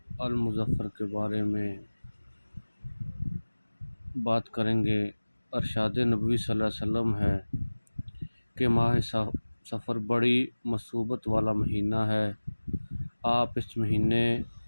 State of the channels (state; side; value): inverted; both; correlation -1.00